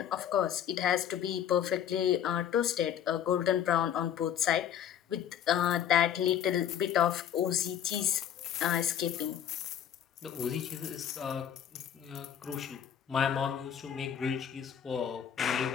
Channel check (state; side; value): quieter; right; 9.6 dB